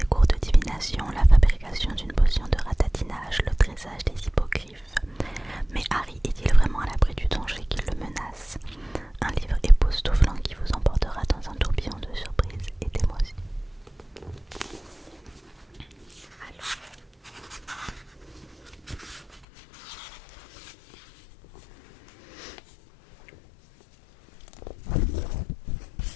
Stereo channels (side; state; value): right; drops out; at 19.4 s